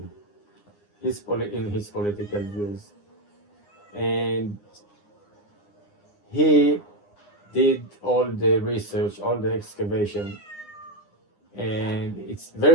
in his political views. And he did all the research, all the excavation, and it's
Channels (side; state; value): right; late; 9.8 ms